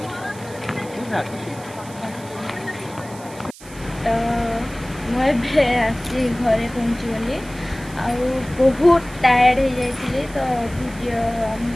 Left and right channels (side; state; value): right; noise; hiss, 19 dB below the sound